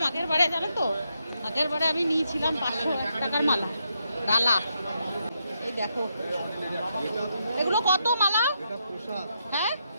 আগের বারে, জানো তো, আগের বারে আমি নিয়েছিলাম 501 টাকার মালা, ডালা। এই দেখো এগুলো কত মালা? হ্যাঁ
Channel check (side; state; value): both; inverted; correlation -0.81